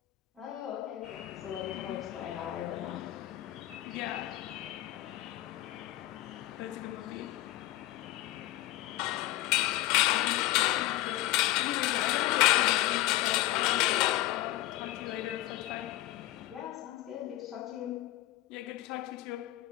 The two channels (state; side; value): quieter; right; 15.6 dB